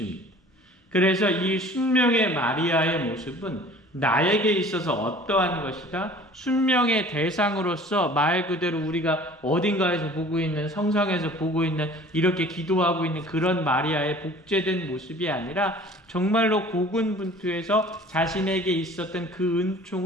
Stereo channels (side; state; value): both; normal; correlation 0.47